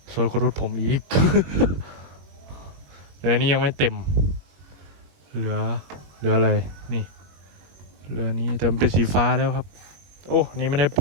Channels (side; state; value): left; late; 21 ms